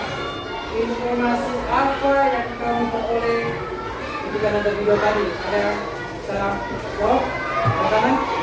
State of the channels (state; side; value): identical; both; correlation 1.00